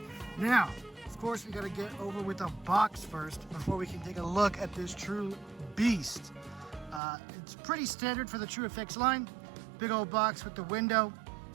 Now, of course, we gotta get over with the box first before we can take a look at this true beast. It's pretty standard for the True FX line. Big old box with the window.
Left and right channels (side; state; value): left; drops out; at 7.0 s